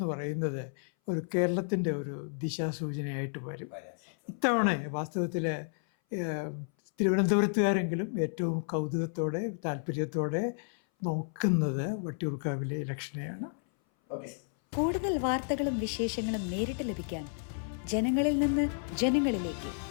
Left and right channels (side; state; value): right; silent; 57 dB below the other